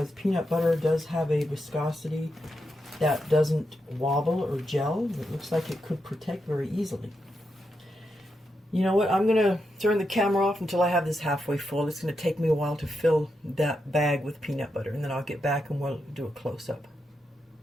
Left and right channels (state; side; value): normal; both; correlation 0.85